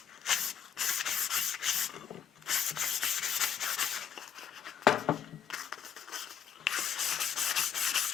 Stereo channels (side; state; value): right; quieter; 8.1 dB